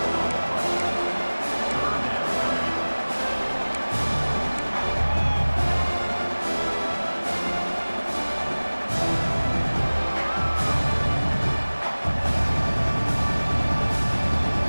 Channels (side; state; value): both; inverted; correlation -1.00